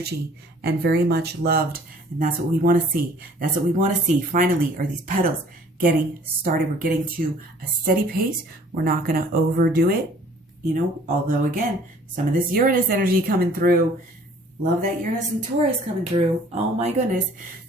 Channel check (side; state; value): both; normal; correlation 0.54